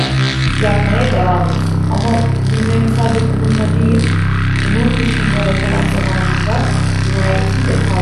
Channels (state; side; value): identical; both; correlation 1.00